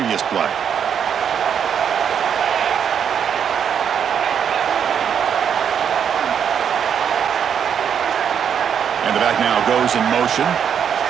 play. And the back now goes in motion.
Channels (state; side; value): quieter; left; 8.0 dB